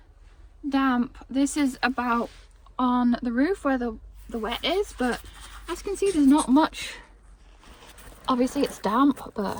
damp. This is about on the roof where the wet is, but as you can see, there's not much. Obviously it's damp, but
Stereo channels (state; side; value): identical; both; correlation 1.00